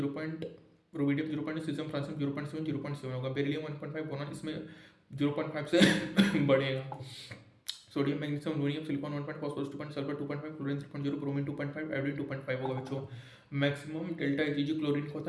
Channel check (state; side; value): identical; both; correlation 1.00